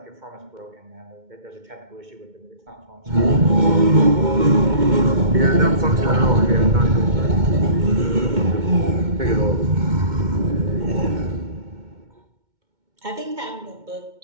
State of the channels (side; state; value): left; late; 2.2 ms